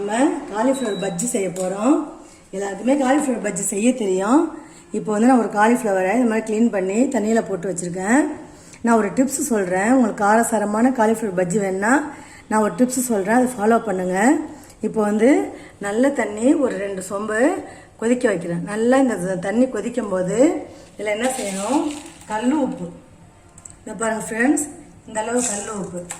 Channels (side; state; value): both; identical; correlation 1.00